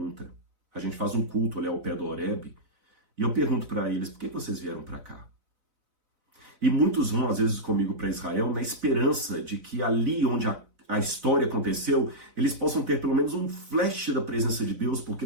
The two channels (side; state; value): left; late; 4.0 ms